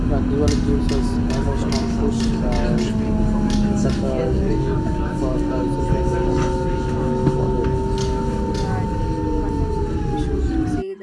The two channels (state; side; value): identical; both; correlation 1.00